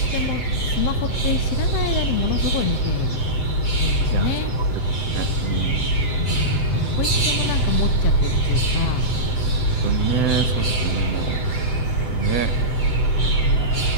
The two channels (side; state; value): right; late; 7.8 ms